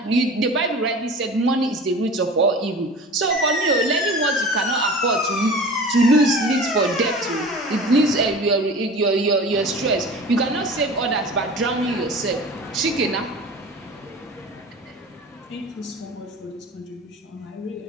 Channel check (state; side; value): normal; both; correlation 0.38